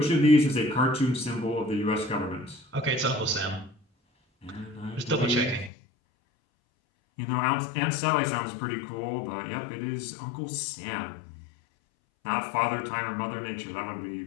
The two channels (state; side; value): drops out; right; at 5.7 s